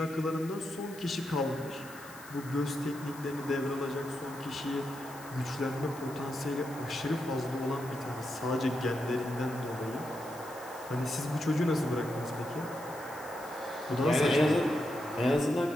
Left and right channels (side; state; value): left; noise; hiss, 18 dB below the sound